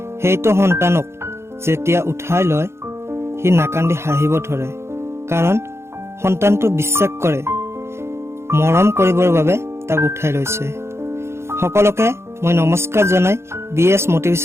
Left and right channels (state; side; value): late; left; 0.13 ms